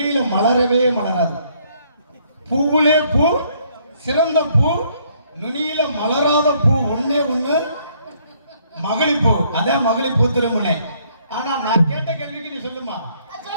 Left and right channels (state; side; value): inverted; both; correlation -0.67